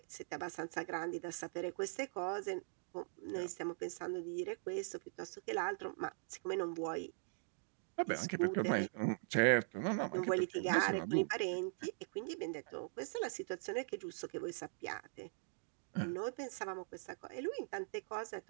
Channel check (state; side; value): silent; left; digital silence